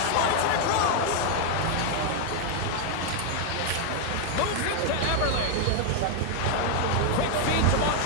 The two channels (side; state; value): both; different; correlation 0.00